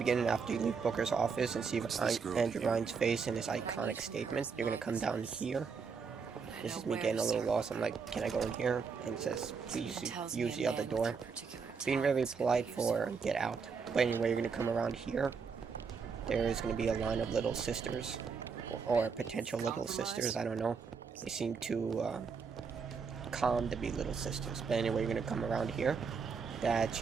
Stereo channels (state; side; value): quieter; left; 5.5 dB